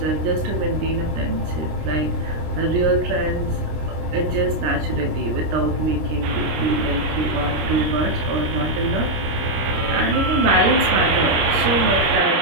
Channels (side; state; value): left; late; 26 ms